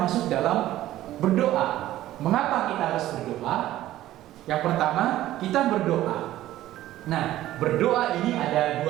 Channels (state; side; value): quieter; left; 14.3 dB